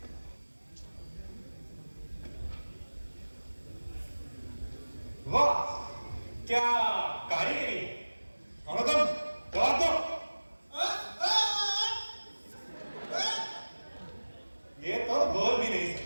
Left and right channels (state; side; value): inverted; both; correlation -1.00